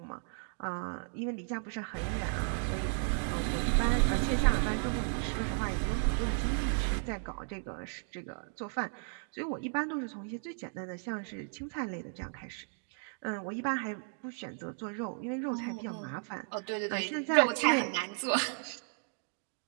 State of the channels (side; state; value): left; silent; 55 dB below the other